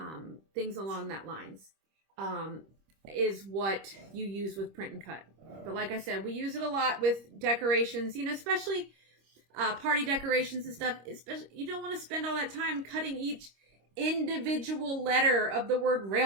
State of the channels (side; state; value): left; late; 26 ms